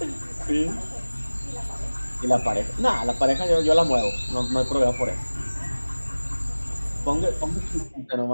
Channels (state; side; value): inverted; both; correlation -1.00